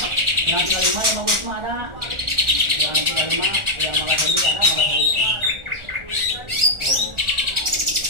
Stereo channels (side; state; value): left; late; 1.4 ms